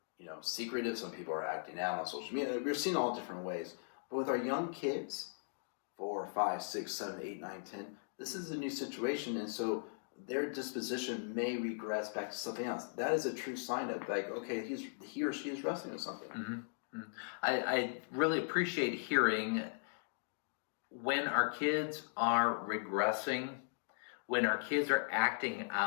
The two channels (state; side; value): silent; right; digital silence